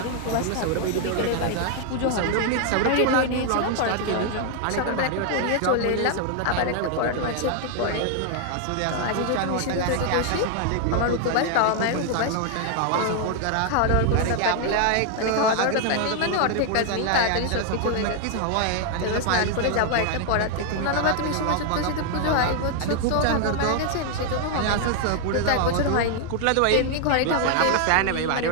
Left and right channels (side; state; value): both; different; correlation 0.00